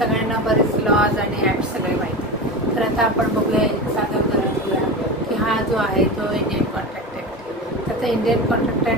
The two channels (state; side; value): normal; both; correlation 0.25